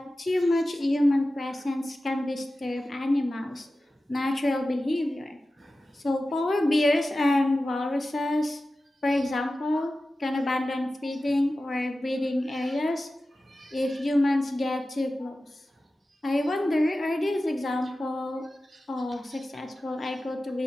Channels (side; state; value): both; normal; correlation 0.94